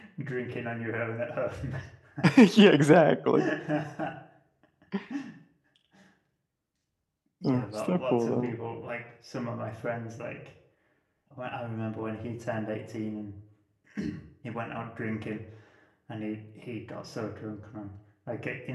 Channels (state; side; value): identical; both; correlation 1.00